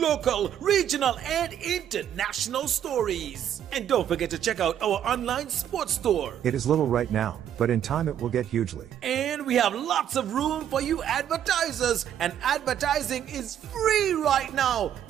regional, and international stories. And don't forget to check out our online sports store. It is little right now, but in time it will get hugely. And we have lots of room for you advertisers. And advertising is free right now.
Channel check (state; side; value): quieter; left; 10.0 dB